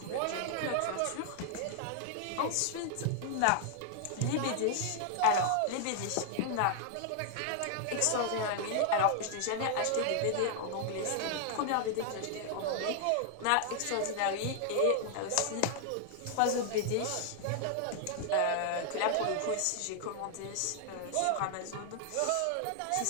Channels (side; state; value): both; different; correlation 0.00